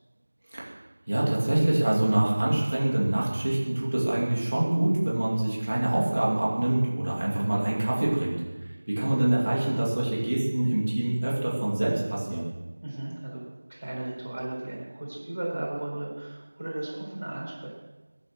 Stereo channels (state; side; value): inverted; both; correlation -1.00